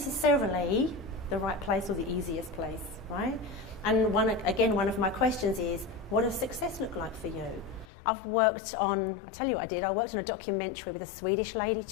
the right place or the easiest place, right? And one of my questions is, what does success look like for you? I've worked on, I'll tell you what I did, I worked on a documentary with a Swedish lady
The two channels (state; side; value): drops out; right; at 7.9 s